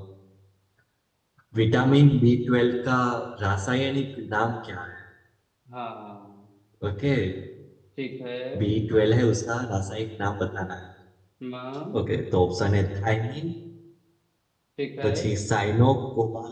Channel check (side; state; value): both; identical; correlation 1.00